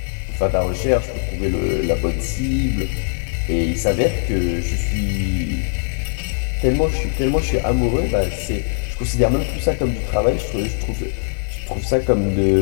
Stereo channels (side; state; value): right; silent; 63 dB below the other